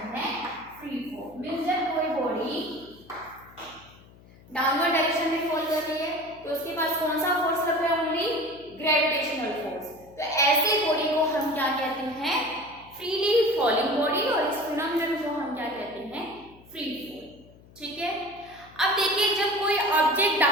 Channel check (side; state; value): left; noise; hum, 24 dB below the sound